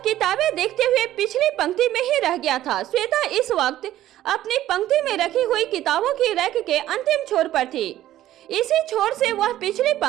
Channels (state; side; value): quieter; left; 13.5 dB